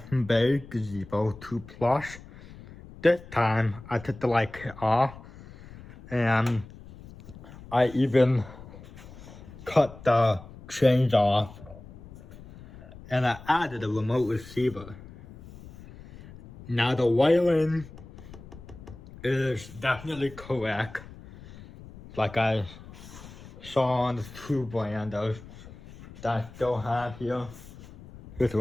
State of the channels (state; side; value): noise; left; rumble, 18 dB below the sound